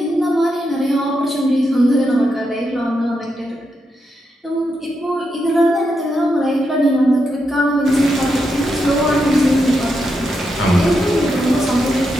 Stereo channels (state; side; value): normal; both; correlation 0.84